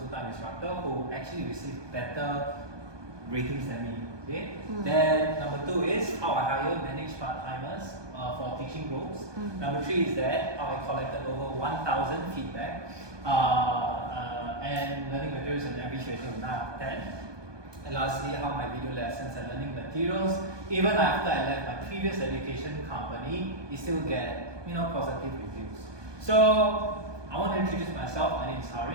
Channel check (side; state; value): left; late; 1.2 ms